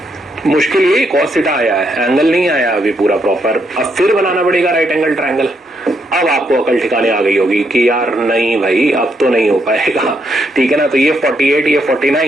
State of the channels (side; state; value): both; normal; correlation 0.77